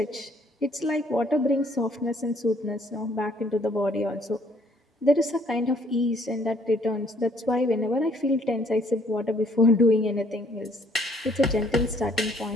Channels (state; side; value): normal; both; correlation 0.63